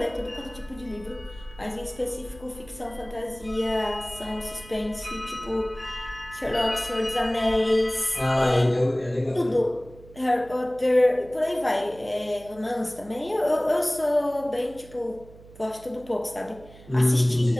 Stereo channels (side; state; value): right; noise; hum, 21 dB below the sound